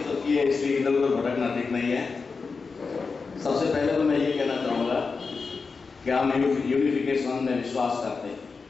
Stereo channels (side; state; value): right; quieter; 4.7 dB